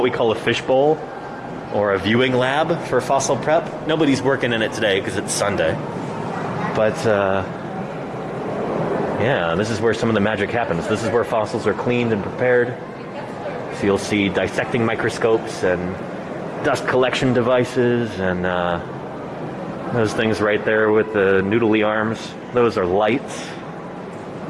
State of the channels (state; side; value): identical; both; correlation 1.00